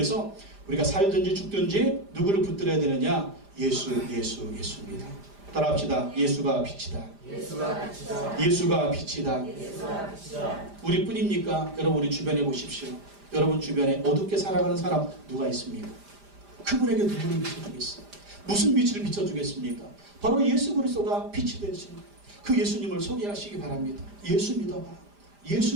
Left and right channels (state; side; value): late; left; 5.0 ms